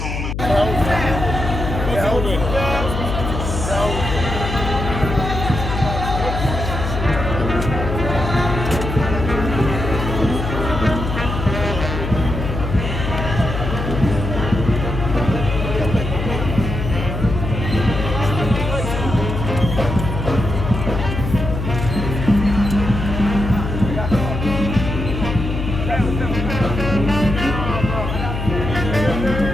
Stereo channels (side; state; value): left; noise; hum, 4 dB below the sound